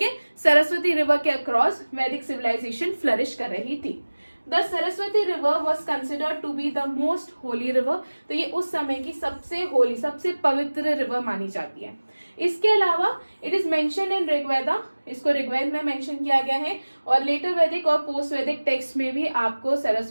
है, सरस्वती रिवर के अक्रॉस वैदिक सिविलाइजेशन फ्लरिश कर रही थी। The Saraswati river was considered to be the most holy river. तो ये उस समय की सबसे होली, सबसे पवित्र रिवर मानी जाती है। इसके अलावा it is mention in Rigveda, इसको ऋग्वेद में मेंशन किया गया है, और लेटर वैदिक और पोस्ट वैदिक टेक्स्ट में भी आपको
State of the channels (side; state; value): both; inverted; correlation -1.00